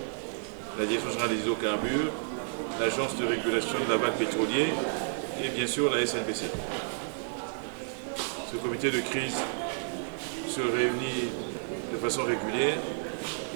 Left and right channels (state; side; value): silent; left; digital silence